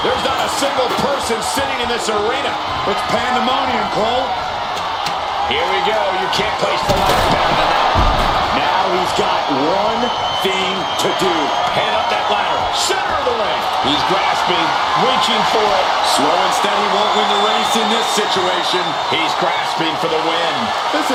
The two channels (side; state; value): both; identical; correlation 1.00